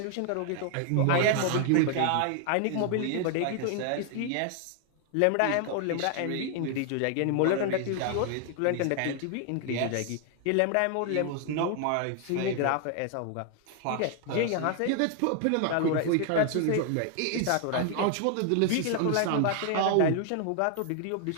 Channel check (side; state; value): both; different; correlation 0.00